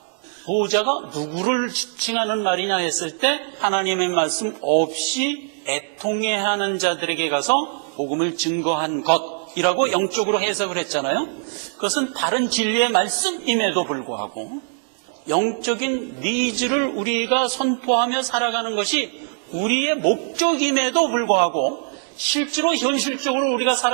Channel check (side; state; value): left; silent; digital silence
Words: 소자가 누구를 지칭하는 말이냐 했을 때 하나님의 말씀 없이 애통해하는 자들에게 가서 복음을 증거한 것이라고 영적으로 해석을 했잖아요. 그것은 바른 진리의 말씀임에도 불구하고 영적인 니즈를 우리가 선포하며 살아가는 것이 우리의 목적임에도 불구하고 실제로 현실적으로 우리가